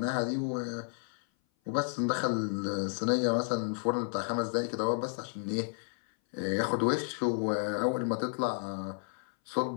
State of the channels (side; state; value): right; silent; 56 dB below the other